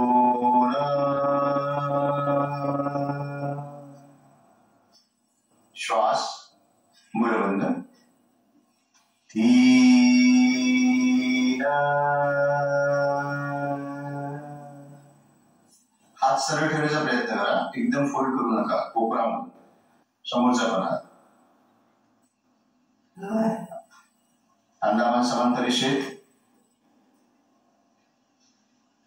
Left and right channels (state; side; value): identical; both; correlation 1.00